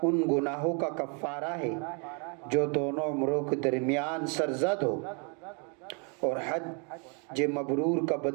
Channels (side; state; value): left; quieter; 36.4 dB